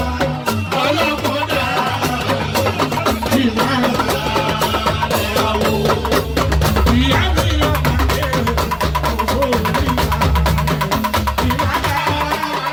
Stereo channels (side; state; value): both; identical; correlation 1.00